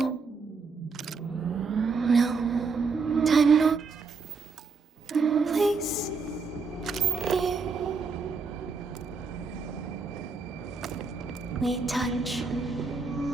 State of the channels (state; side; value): quieter; left; 4.7 dB